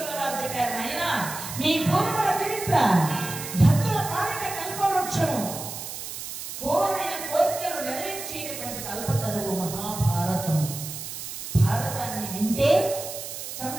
వారు చెప్పారు, నాయన మీ పూర్వల చరిత్ర భక్తుల పాలిట కల్పవృక్షము, కోరిన కోరికలు నెరవేర్చేటటువంటి కల్పతరువు మహాభారతం. భారతాన్ని వింటే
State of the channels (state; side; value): noise; right; hiss, 8 dB below the sound